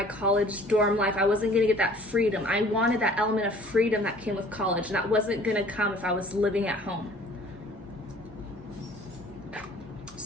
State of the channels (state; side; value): normal; both; correlation 0.52